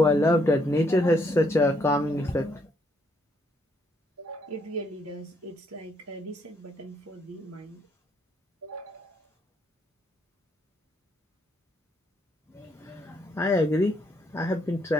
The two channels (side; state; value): both; normal; correlation 0.72